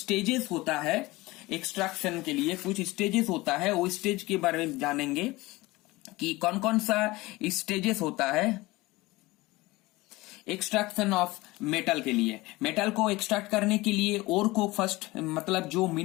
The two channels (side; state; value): right; quieter; 20.7 dB